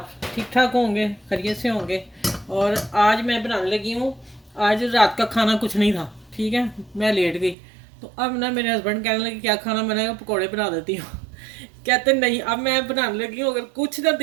ठीक ठाक होंगे, खैरियत से होंगे। और आज मैं बनाने लगी हूँ। आज रात का खाना कुछ नहीं था, ठीक है। मैं लेट गई तो अब ना मेरे हस्बैंड कहने लगे क्या खाना बनाएगा, पकौड़े बना देती हूँ। कहते नहीं, अब मैं बनाने लगी हूँ। अगर कुछ ना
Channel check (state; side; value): drops out; left; at 7.6 s